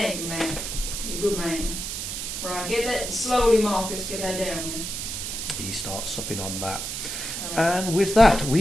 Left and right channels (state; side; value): noise; right; hiss, 5 dB below the sound